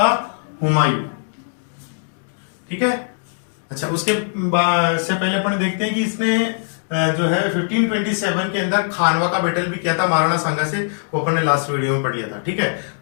हुमायूं। ठीक है, अच्छा, उसके से पहले अपन देखते हैं कि इसने जो है 1527 के अंदर खानवा का बैटल भी किया था महाराणा सांगा से, वो अपन ने लास्ट वीडियो में पढ़ लिया था। ठीक है,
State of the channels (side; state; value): right; silent; digital silence